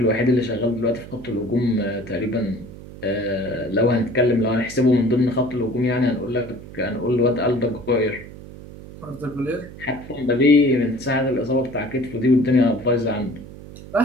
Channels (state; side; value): noise; right; hum, 15 dB below the sound